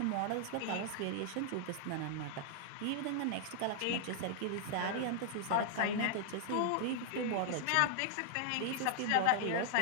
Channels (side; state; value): both; different; correlation 0.00